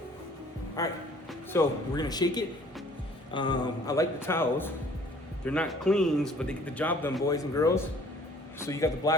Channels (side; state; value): both; normal; correlation 0.55